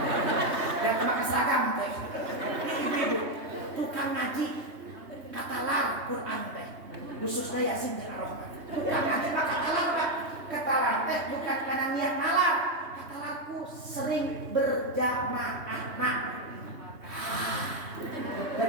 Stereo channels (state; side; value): late; left; 3.1 ms